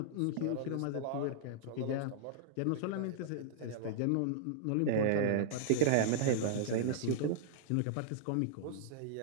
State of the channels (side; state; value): both; different; correlation -0.01